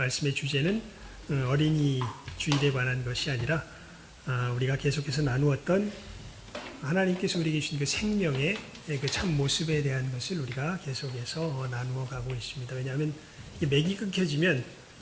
주제는 어린이 주일에 관한 것이 아니라 우리가 계속해서 나누었던 하나님께서 우리에게 주신 그 생명의 그 참 모습에 대한 것을 우리가 계속해서 나누어 가고 있습니다. 왜냐하면 이 맥이 끊겨지면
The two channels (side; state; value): both; identical; correlation 1.00